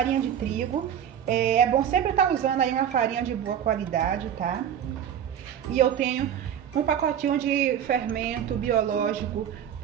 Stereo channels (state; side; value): quieter; left; 9.3 dB